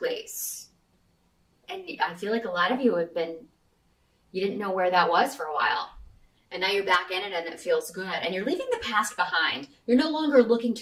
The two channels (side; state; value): both; identical; correlation 1.00